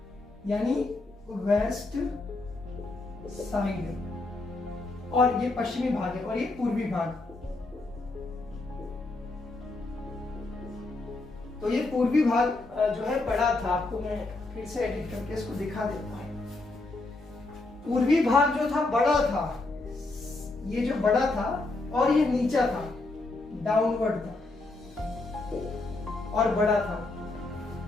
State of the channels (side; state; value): right; quieter; 3.1 dB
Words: यानी वेस्ट साइड, और ये पश्चिमी भाग है और ये पूर्वी भाग। तो ये पूर्वी भाग जो है बड़ा था। आपको मैं फिर से एडिट करके इसको दिखा देता हूं। पूर्वी भाग जो था बड़ा था, ये जो बड़ा था, और ये नीचा था, डाउनवर्ड था और बड़ा था।